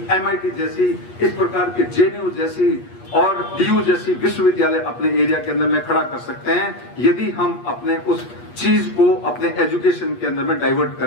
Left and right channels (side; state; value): right; late; 8.4 ms